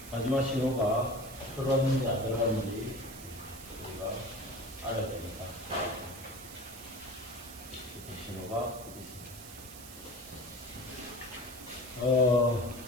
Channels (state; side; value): noise; right; hiss, 14 dB below the sound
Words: 마지막 신호가 들어왔는지 안 들어왔는지 우리가 알아야 됩니다. 이렇게 신호가 있습니다.